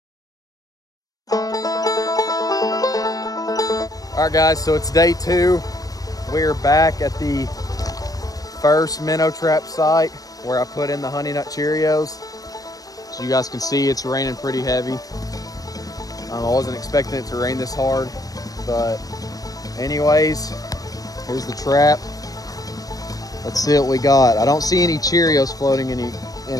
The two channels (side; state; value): right; late; 0.18 ms